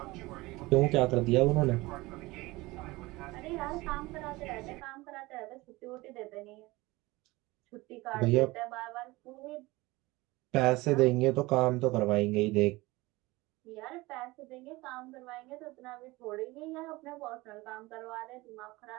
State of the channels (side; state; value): left; quieter; 21.1 dB